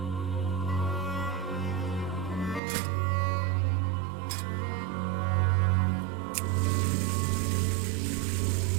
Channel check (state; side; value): drops out; left; at 2.6 s